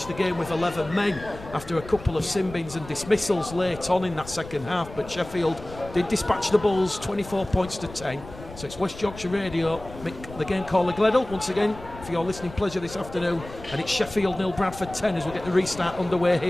the game with 11 men after a couple of sin-bins and dismissals late on in that second half, but Sheffield did dispatch the Bulls 24 points to 10. So it's West Yorkshire Radio, Mick, the game caller Gleddle, once again, for your listening pleasure this afternoon. And it's Sheffield 0, Bradford 10 as we get the restart underway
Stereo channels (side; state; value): left; noise; rumble, 15 dB below the sound